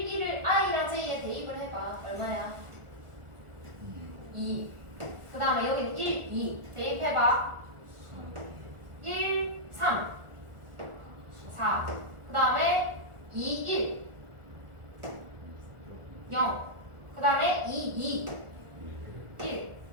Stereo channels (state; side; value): late; left; 1.5 ms